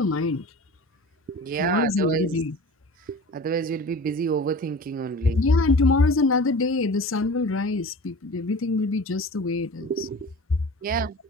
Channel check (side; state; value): both; normal; correlation 0.38